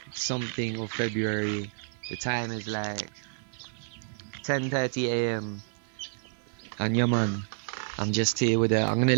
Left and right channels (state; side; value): silent; left; 58 dB below the other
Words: something of February. The time is like 10:30 a.m. And yeah, man, I'm just here with I'm gonna